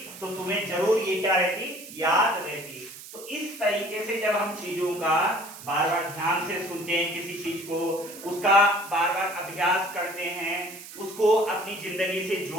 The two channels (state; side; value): noise; right; hiss, 15 dB below the sound